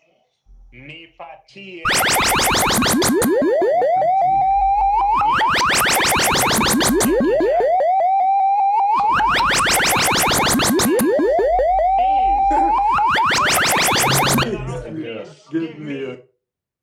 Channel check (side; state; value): both; identical; correlation 1.00